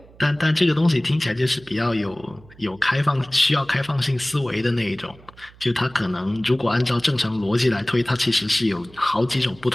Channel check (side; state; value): right; noise; hum, 24 dB below the sound